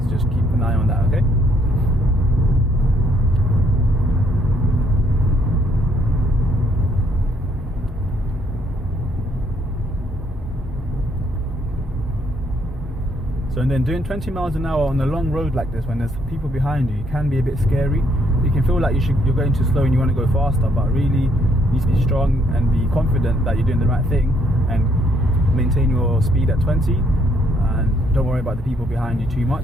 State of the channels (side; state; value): both; normal; correlation 0.69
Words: so just keep an eye on that, okay? So and then doing 20 miles an hour on a long road like this, when there's people behind you, it can be a bit scary. You can feel like you're going too slow and you want to go faster, but really you need to be strong and be confident that you're doing the right thing, and maintain your speed at 20, and don't worry about the people behind you too